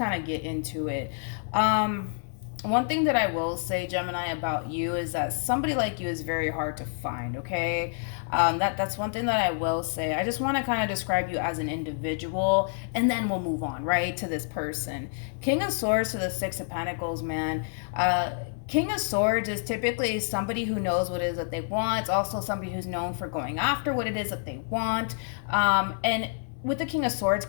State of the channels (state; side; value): silent; right; 59 dB below the other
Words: of get into it. One thing that I will say, Gemini, about you is that somebody like you is very hard to find, okay? That's one thing that I will say. I just want to kind of describe you as an individual, and then we'll move on, right, to this person. King of Swords to the Six of Pentacles, man. King of Swords is typically somebody who knows what it is that they want. It's also somebody who's known for going after what it is that they want. And with the King of Swords